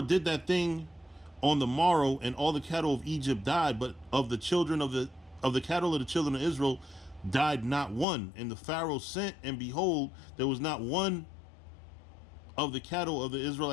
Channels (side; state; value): right; drops out; at 8.1 s